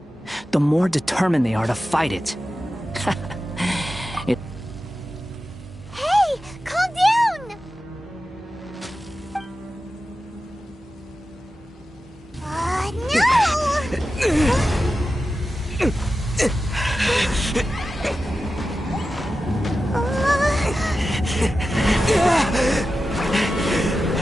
the more determined they are to fight it. Hey, calm down!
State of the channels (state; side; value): normal; both; correlation 0.93